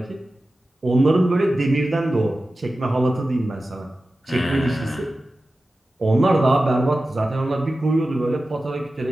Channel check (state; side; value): normal; both; correlation 0.94